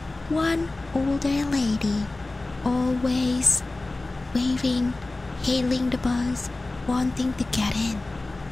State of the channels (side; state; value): right; quieter; 3.0 dB